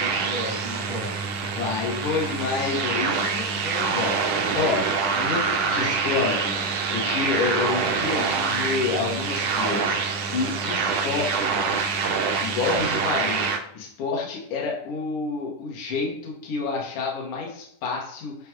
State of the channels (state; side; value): late; right; 10 ms